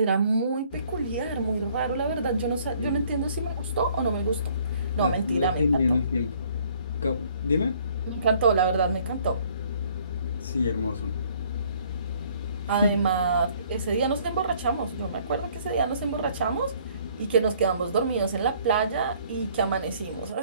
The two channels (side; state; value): both; inverted; correlation -0.60